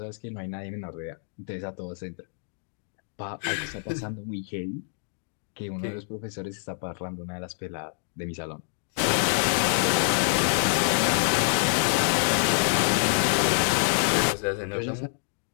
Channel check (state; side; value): silent; right; digital silence